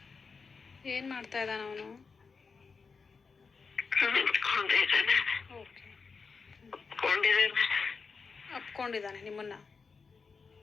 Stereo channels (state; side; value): quieter; right; 5.0 dB